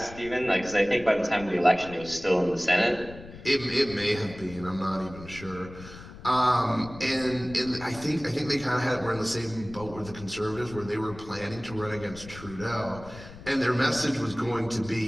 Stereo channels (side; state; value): left; noise; rumble, 16 dB below the sound